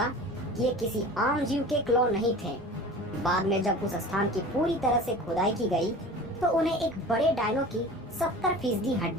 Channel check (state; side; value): normal; both; correlation 0.38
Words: कि ये किसी आम जीव के क्लो नहीं थे। बाद में जब उस स्थान की पूरी तरह से खुदाई की गई तो उन्हें एक बड़े डायनो की 70%